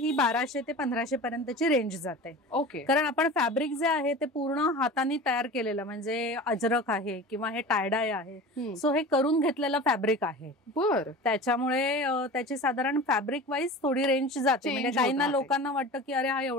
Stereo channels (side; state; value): both; normal; correlation 0.35